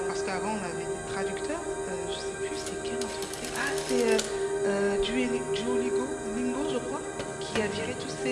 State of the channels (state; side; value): identical; both; correlation 1.00